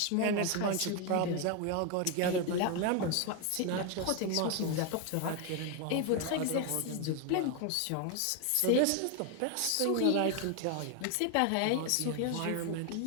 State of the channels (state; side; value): different; both; correlation 0.01